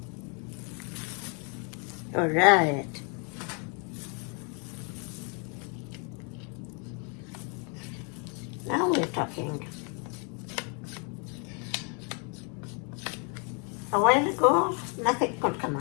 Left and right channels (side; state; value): right; quieter; 37.0 dB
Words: All right. Now we're talking. A while ago, nothing could come